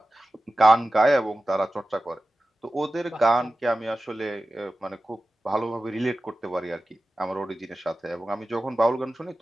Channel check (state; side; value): normal; both; correlation 0.95